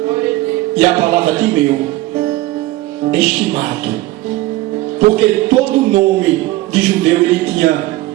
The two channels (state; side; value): quieter; left; 17.8 dB